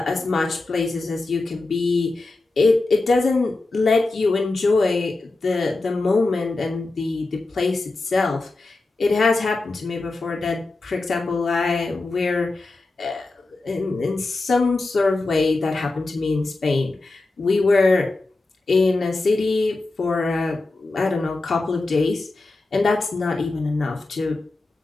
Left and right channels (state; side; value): quieter; right; 3.2 dB